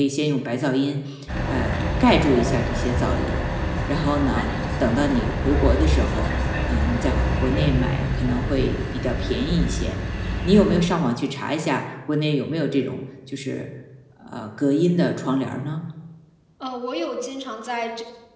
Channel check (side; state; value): both; identical; correlation 1.00